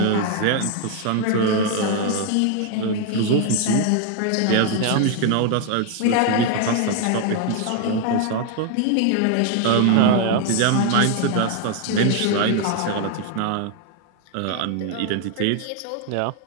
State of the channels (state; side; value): different; both; correlation 0.00